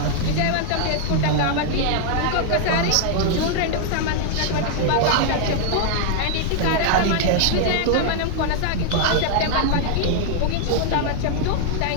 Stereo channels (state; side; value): different; both; correlation 0.00